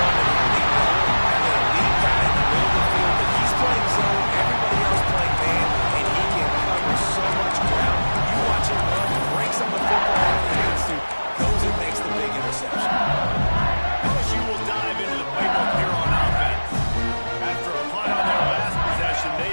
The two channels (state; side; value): inverted; both; correlation -1.00